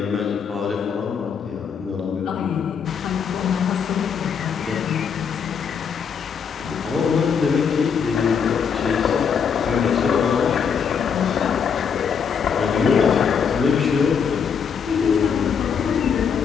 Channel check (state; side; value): quieter; right; 6.8 dB